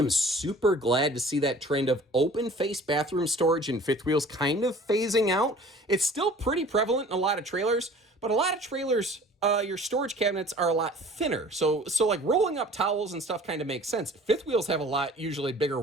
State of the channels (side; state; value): both; normal; correlation 0.47